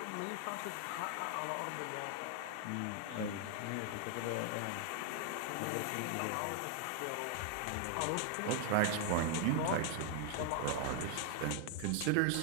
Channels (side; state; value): both; different; correlation 0.00